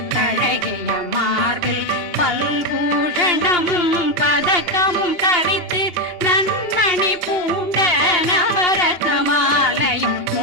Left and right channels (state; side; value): late; right; 2.8 ms